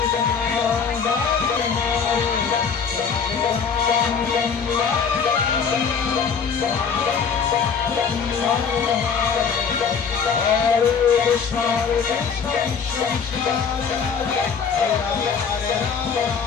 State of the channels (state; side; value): quieter; right; 6.3 dB